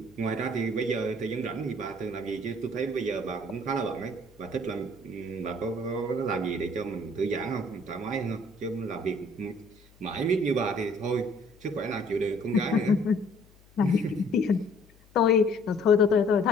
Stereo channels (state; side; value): noise; left; hum, 28 dB below the sound